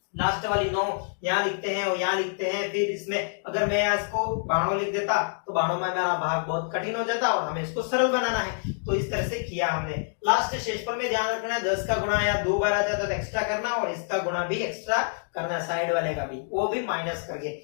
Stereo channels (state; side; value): silent; right; digital silence